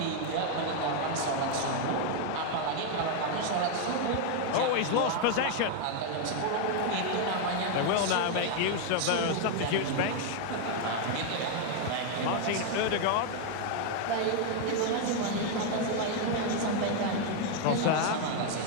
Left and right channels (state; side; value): different; both; correlation 0.01